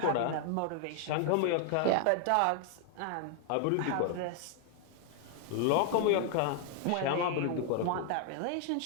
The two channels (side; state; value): both; different; correlation 0.00